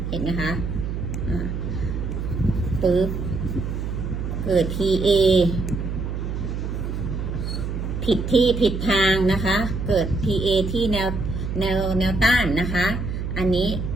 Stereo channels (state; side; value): noise; right; hum, 4 dB below the sound